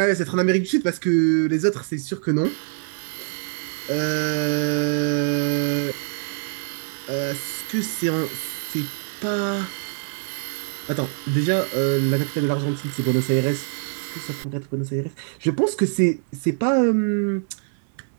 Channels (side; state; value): left; silent; digital silence